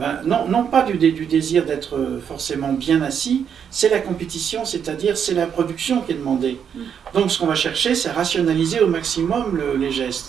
non pas du désir d'être forcément bien assis, c'est la compétition, c'est-à-dire c'est la production qui est demandée. Donc ce qu'on va chercher, c'est rationaliser au maximum les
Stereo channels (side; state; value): left; quieter; 7.8 dB